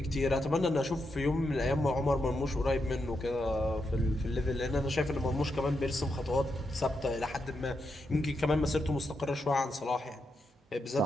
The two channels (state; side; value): normal; both; correlation 0.84